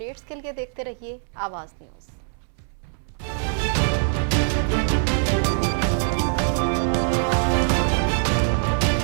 के लिए देखते रहिए आवाज न्यूज।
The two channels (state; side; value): silent; left; 63 dB below the other